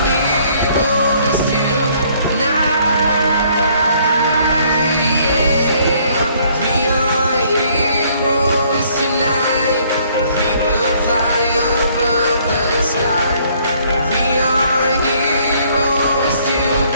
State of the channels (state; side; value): inverted; both; correlation -0.63